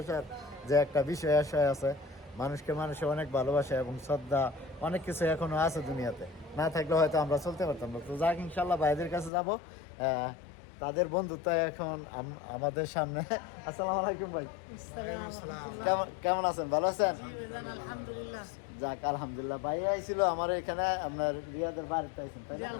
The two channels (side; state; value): right; drops out; at 9.3 s